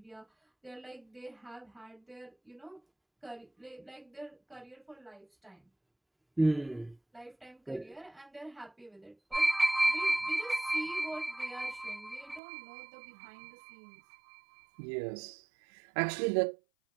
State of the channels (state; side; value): drops out; left; at 12.4 s